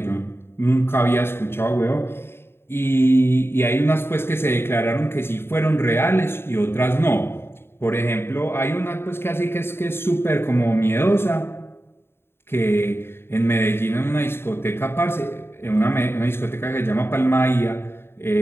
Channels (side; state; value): right; late; 0.11 ms